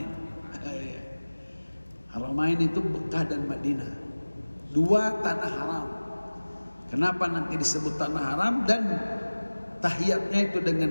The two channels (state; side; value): inverted; both; correlation -1.00